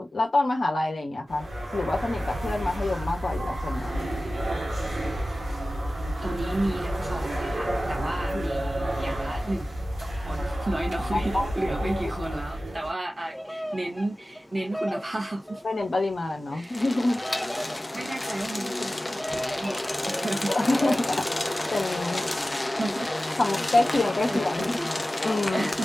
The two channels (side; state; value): both; normal; correlation 0.96